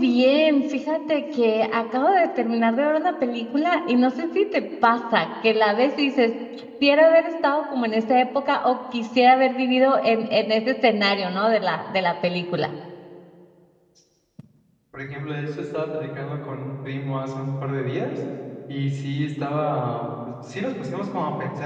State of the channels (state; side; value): identical; both; correlation 1.00